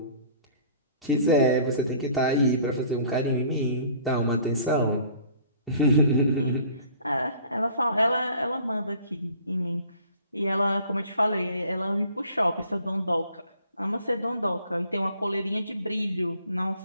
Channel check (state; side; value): inverted; both; correlation -0.52